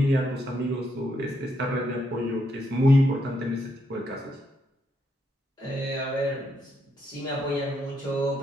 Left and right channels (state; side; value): normal; both; correlation 0.77